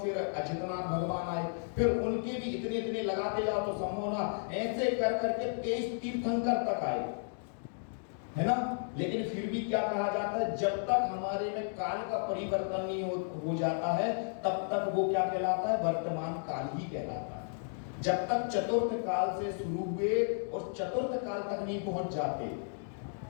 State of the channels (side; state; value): right; silent; digital silence